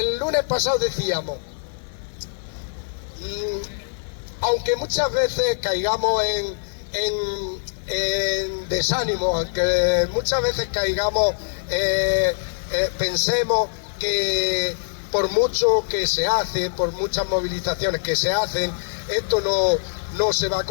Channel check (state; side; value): silent; right; 58 dB below the other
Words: lunes pasado decíamos, aunque muchas veces caigamos en desánimo, aunque muchas veces caigamos, pensemos que por mucho que se hace, por muchas movilizaciones que se hacen, esto no se va a